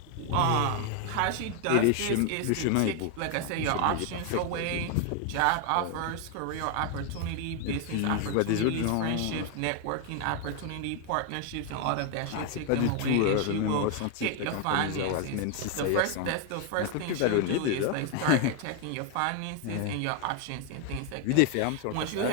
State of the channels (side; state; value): both; different; correlation 0.01